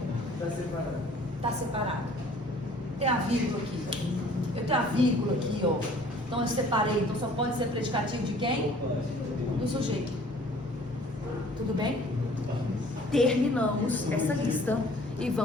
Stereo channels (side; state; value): both; normal; correlation 0.53